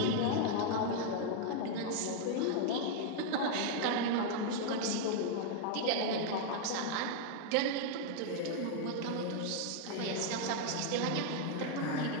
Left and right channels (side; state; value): both; different; correlation 0.00